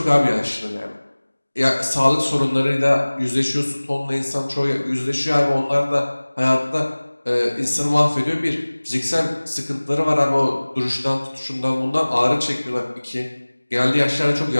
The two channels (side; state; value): both; inverted; correlation -1.00